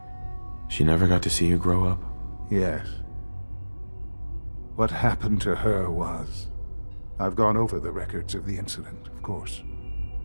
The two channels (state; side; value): inverted; both; correlation -1.00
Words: She never got to see you grow up? Yes. What happened to her was I've gone over the records of the incident, of course.